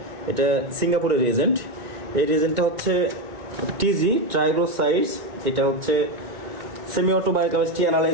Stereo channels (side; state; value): left; late; 2.2 ms